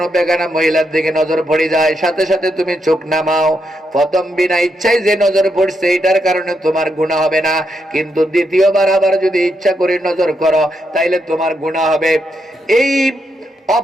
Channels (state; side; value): normal; both; correlation 0.81